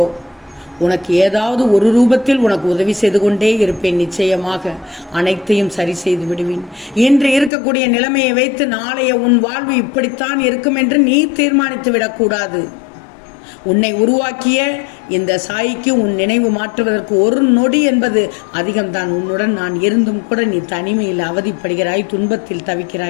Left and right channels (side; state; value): right; drops out; at 7.5 s